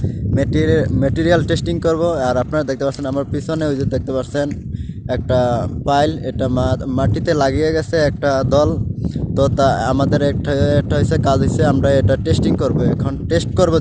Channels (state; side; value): identical; both; correlation 1.00